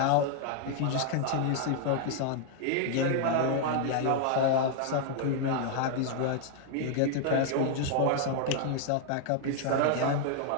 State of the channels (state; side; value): different; both; correlation 0.00